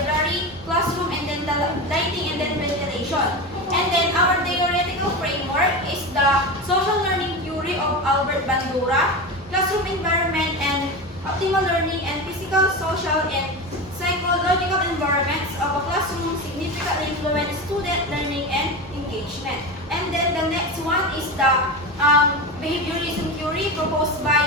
classroom, and then the lighting and then ventilation. And then our theoretical framework is the social learning theory of Albert Bandura, classroom environment and optimal learning and physical, social, and psychological environments of a classroom significantly influence student learning and engagement. And then the next one is the behaviorism theory proposed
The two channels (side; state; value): both; normal; correlation 0.23